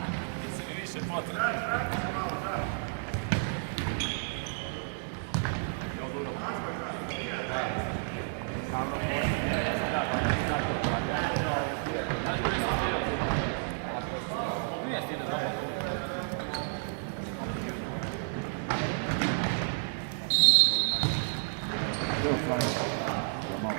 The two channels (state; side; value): silent; left; 57 dB below the other